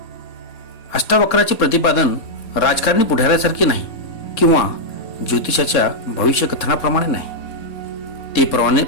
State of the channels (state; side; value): late; right; 4.2 ms